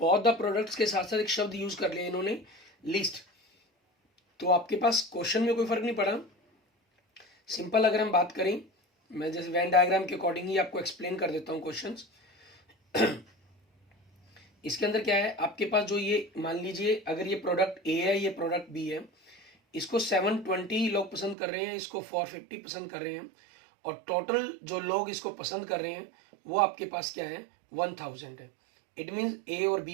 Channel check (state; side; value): drops out; left; at 21.4 s